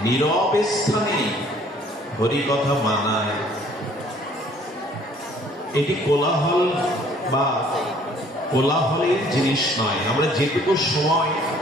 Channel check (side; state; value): both; normal; correlation 0.58